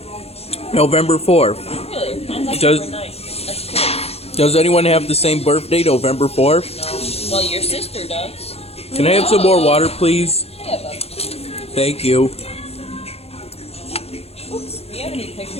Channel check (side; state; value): right; late; 0.29 ms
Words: November 4th. Really? Mine's Does- October 9th. That's cool. Does anyone have the same birthday, November 4th? No. Well, your sister does. Can I have some more water, please? Yeah, but. Thank you. Oops. Do you have any